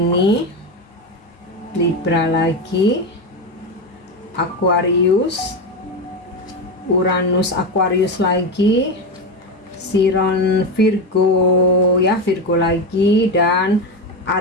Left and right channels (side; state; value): both; normal; correlation 0.15